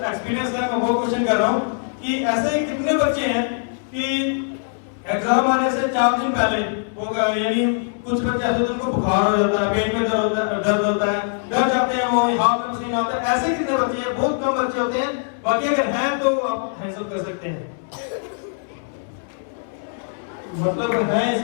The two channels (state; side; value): silent; right; 64 dB below the other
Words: एक्सपीरियंस है, मैं वो क्वेश्चन कर रहा हूँ कि ऐसे कितने बच्चे हैं कि एग्जाम आने से 4 दिन पहले वो, यानी कुछ बच्चे ऐसे होते हैं उनको बुखार हो जाता है, पेट में दर्द होता है, डर जाते हैं, वो हाथ में पसीना आता है। ऐसे कितने बच्चे हैं? बहुत कम बच्चे होते हैं। बाकी अगर हैं तो आप हैंड्स अप कर सकते हैं, मतलब हैं